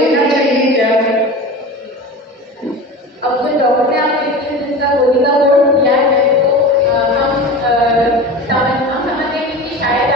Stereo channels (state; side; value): normal; both; correlation 0.31